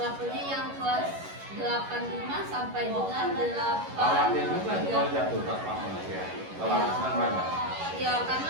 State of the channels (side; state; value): left; late; 11 ms